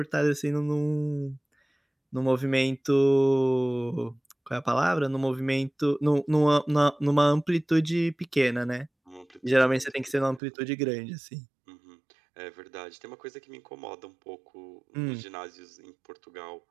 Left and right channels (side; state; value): left; drops out; at 10.4 s